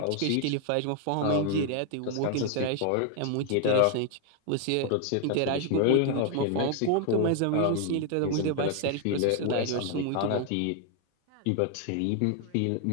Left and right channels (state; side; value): different; both; correlation 0.00